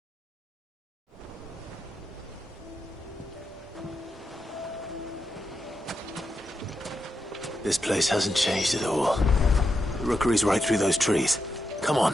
This place hasn't changed at all. The rookery's right through those trees. Come on.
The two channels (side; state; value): both; normal; correlation 0.85